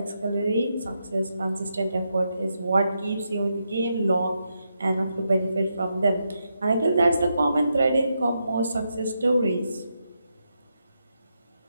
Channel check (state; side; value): inverted; both; correlation -0.83